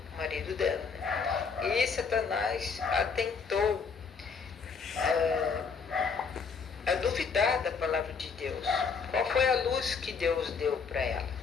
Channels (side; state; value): right; quieter; 5.4 dB